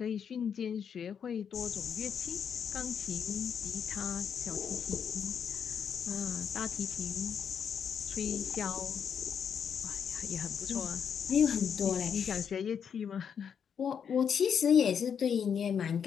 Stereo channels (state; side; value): quieter; right; 7.5 dB